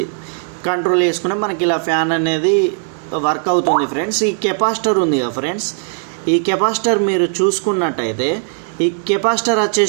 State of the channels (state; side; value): silent; left; digital silence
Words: కంట్రోల్ చేసుకుంటే మనకి ఇలా ఫ్యాన్ అనేది వర్క్ అవుతుంది ఫ్రెండ్స్. ఈ కెపాసిటర్ ఉంది కదా ఫ్రెండ్స్, ఈ కెపాసిటర్ మీరు చూసుకున్నట్టయితే ఈ కెపాసిటర్